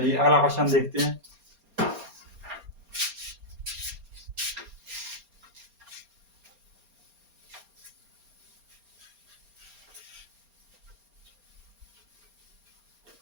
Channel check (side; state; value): left; late; 4.3 ms